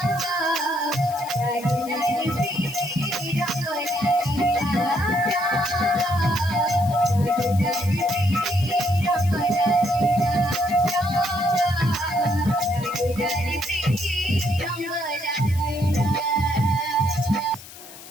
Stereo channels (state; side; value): noise; left; hiss, 17 dB below the sound